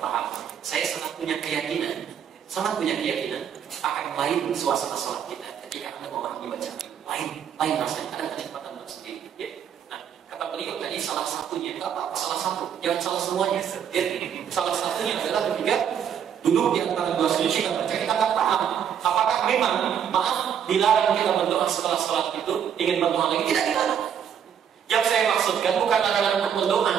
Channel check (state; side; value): quieter; left; 8.5 dB